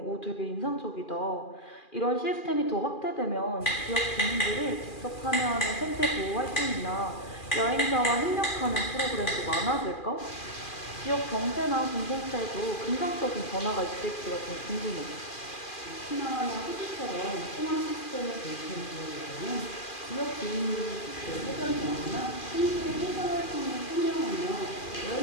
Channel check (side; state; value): right; late; 2.4 ms